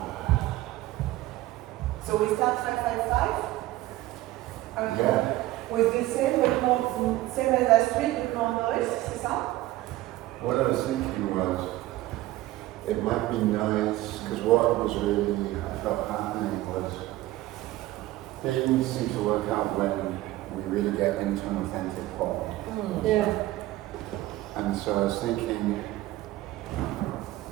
So we start 555? Yeah. With the same, but more, same as last week, with more noise, c'est ça? What I was thinking was, it might be nice, because what was really, I felt happening was, things seem to work out when we really get into an authentic form. Yeah. And so I was thinking,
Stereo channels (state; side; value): quieter; left; 16.5 dB